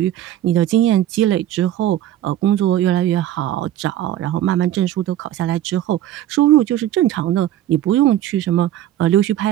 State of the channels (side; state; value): left; quieter; 12.4 dB